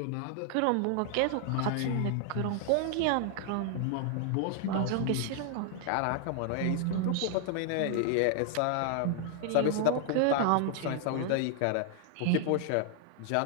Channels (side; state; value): both; different; correlation 0.00